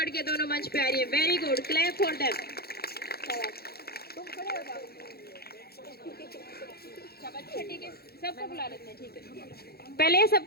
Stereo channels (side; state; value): right; late; 0.46 ms